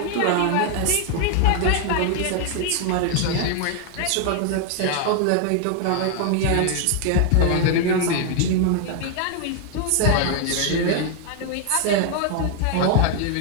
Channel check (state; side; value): different; both; correlation 0.01